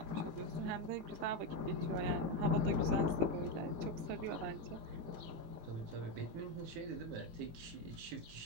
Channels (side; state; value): left; late; 18 ms